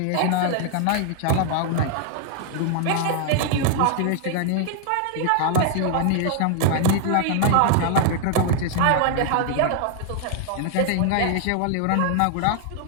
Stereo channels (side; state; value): both; different; correlation 0.00